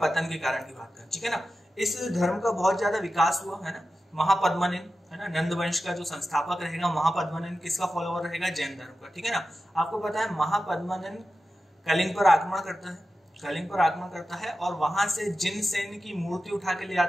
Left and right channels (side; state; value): both; normal; correlation 0.93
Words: के कारण की बात करें, ठीक है ना। इस धर्म का बहुत ज्यादा विकास हुआ, है ना। महापद्मनिन, है ना, नंद वंश का जो संस्थापक रहेगा महापद्मनिन, किसका फॉलोअर रहेगा, जैन धर्म का, ठीक है ना। आपको पता है महापद्मनिन कलिंग पर आक्रमण करता है, कलिंग पर आक्रमण करता है और वहां से जिनसेन की मूर्ति उठा के ले